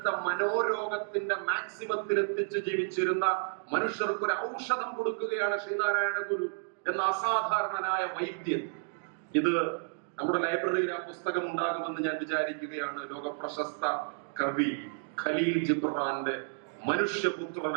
മനോരോഗത്തിന്റെ മാക്സിമത്തിൽ എത്തിച്ച് ജീവിച്ചിരുന്ന മനുഷ്യർക്ക് ഒരു ഔഷധം കൊടുക്കുകയാണ് ശ്രീനാരായണ ഗുരു എന്ന അസാധാരണനായ വൈദ്യൻ. ഇത് നമ്മുടെ ലൈബ്രറിയിൽ ആ പുസ്തകം ഉണ്ടാകുമെന്ന് ഞാൻ വിചാരിക്കുകയാണ്. ലോകപ്രശസ്ത കവി ഖലീൽ ജിബ്രാന്റെ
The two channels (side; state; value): left; silent; digital silence